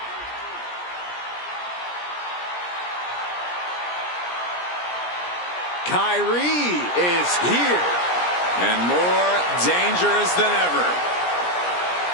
Kyrie is here. And more dangerous than ever.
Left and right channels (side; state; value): right; late; 17 ms